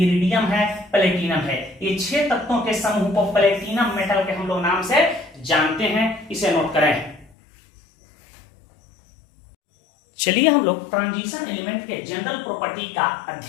है, प्लेटिनम है। ये 6 तत्वों के समूह को प्लेटिनम मेटल के हम लोग नाम से जानते हैं, इसे नोट करें। चलिए हम लोग ट्रांजिशन एलिमेंट के जनरल प्रॉपर्टी का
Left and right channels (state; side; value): drops out; right; at 7.3 s